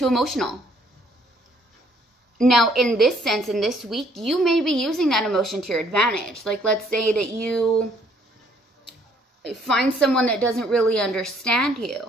emotional. Now, in this sense, in this week, you may be using that emotion to your advantage. Like, let's say that you find someone that doesn't really understand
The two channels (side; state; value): both; normal; correlation 0.64